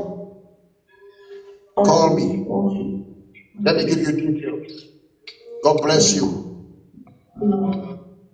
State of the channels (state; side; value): identical; both; correlation 1.00